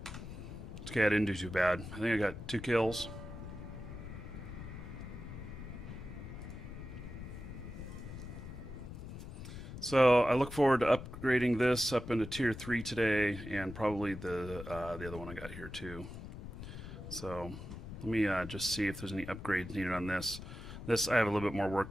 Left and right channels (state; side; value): noise; left; rumble, 10 dB below the sound